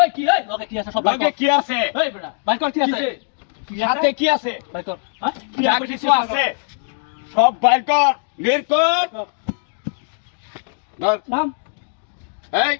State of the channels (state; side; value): silent; right; digital silence